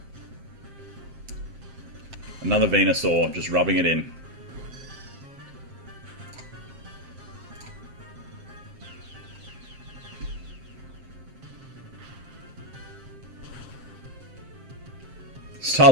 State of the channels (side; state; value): left; late; 7.5 ms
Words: Another Venusaur, just rubbing it in.